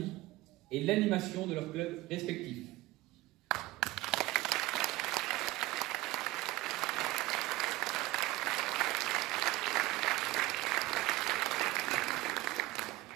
et l'animation de leurs clubs respectifs.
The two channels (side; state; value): left; quieter; 18.5 dB